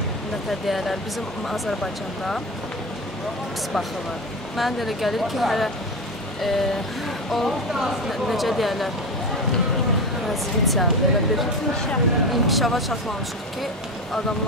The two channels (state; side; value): normal; both; correlation 0.21